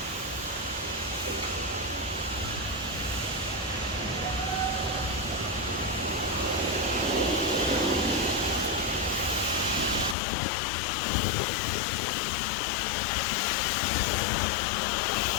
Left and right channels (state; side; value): drops out; right; at 10.2 s